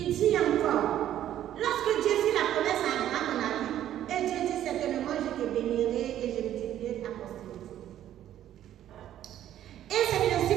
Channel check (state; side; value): quieter; left; 11.7 dB